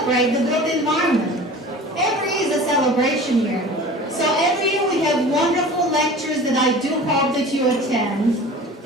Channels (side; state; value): both; normal; correlation 0.40